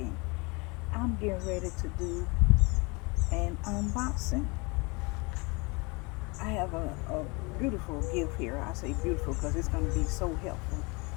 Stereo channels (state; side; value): quieter; right; 28.1 dB